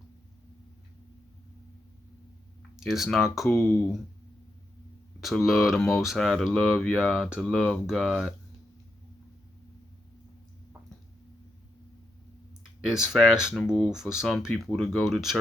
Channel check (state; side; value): normal; both; correlation 0.83